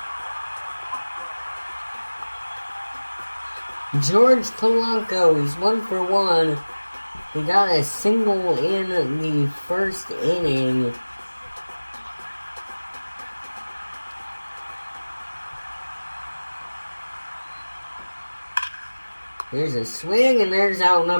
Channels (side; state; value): both; inverted; correlation -1.00